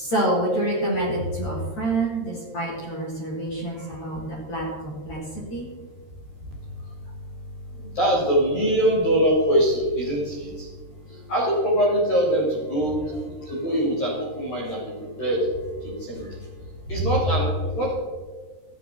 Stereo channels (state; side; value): late; right; 13 ms